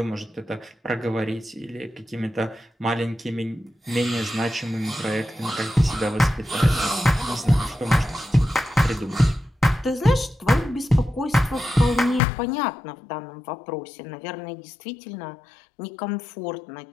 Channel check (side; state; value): right; drops out; at 12.2 s